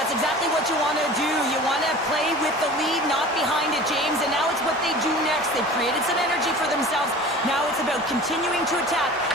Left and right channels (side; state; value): both; normal; correlation 0.40